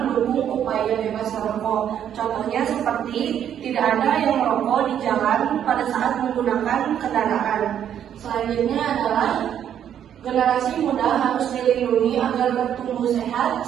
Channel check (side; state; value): left; quieter; 9.6 dB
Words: mendukung upaya bebas merokok. Contohnya seperti tidak ada yang merokok di jalan pada saat menggunakan kendaraan. Selanjutnya adalah generasi muda harus dilindungi agar bertumbuh sehat,